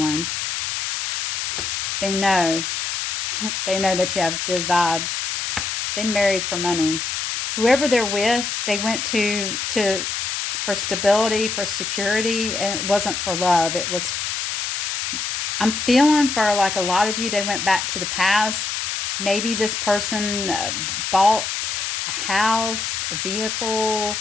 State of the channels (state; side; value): noise; left; hiss, 2 dB below the sound